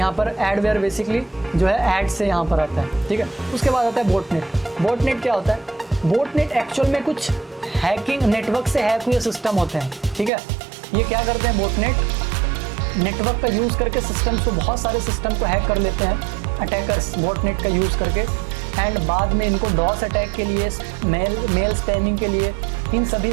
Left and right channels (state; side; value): drops out; left; at 10.3 s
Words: पर एडवेयर बेसिकली जो है ऐड से यहाँ पर आता है। ठीक है, उसके बाद आता है बोटनेट। बोटनेट क्या होता है? बोटनेट एक्चुअल में कुछ हैकिंग, नेटवर्क से हैक हुए सिस्टम होते हैं। ठीक है, ये क्या करते हैं बोटनेट, नेटवर्क का यूज़ करके सिस्टम्स को, बहुत सारे सिस्टम को हैक कर लेते हैं अटैकर्स बोटनेट का यूज़ करके, एंड बाद में इनको डॉस अटैक के लिए, मेल स्पैमिंग के लिए इन सभी